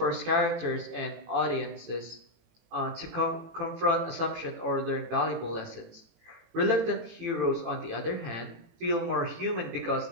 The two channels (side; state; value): left; late; 18 ms